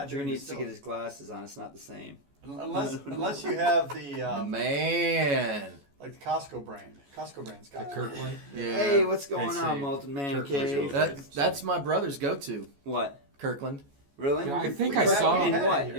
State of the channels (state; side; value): late; left; 14 ms